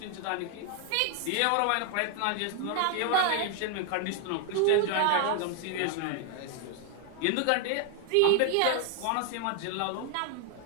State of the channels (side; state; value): both; different; correlation 0.00